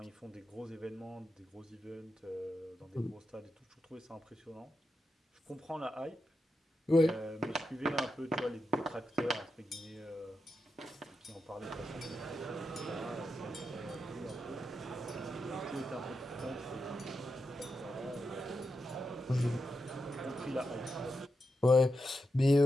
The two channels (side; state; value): both; normal; correlation 0.87